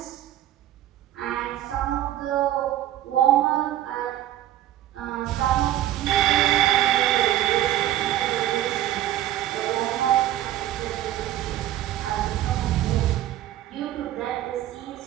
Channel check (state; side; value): quieter; left; 13.1 dB